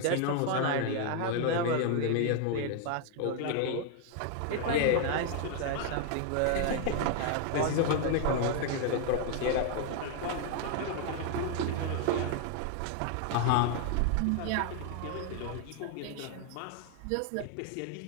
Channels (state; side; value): different; both; correlation 0.00